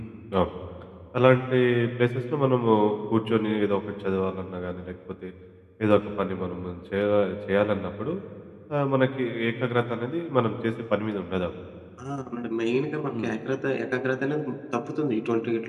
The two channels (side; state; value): both; identical; correlation 1.00